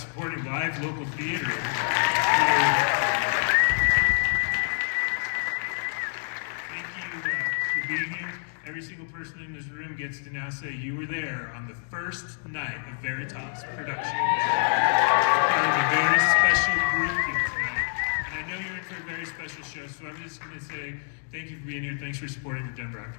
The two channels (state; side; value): silent; right; digital silence